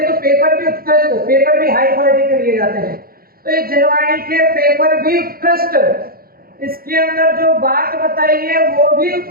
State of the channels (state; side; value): late; left; 0.43 ms